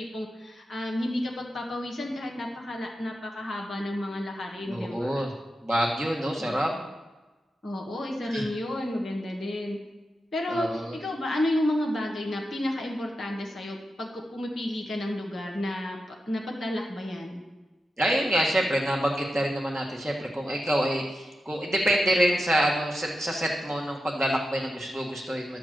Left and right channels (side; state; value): both; normal; correlation 0.89